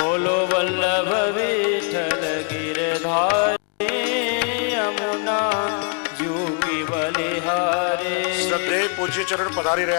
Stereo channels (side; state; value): right; quieter; 38.6 dB